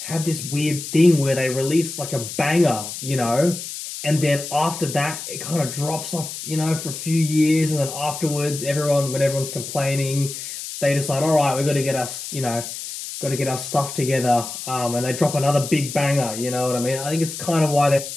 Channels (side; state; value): left; noise; hiss, 8 dB below the sound